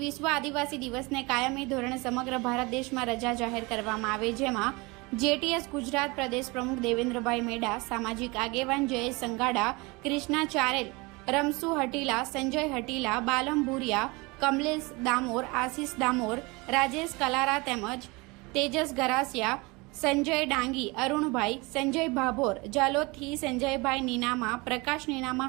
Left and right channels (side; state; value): left; quieter; 25.6 dB